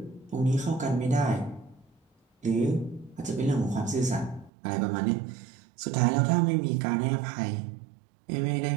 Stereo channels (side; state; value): left; drops out; at 4.5 s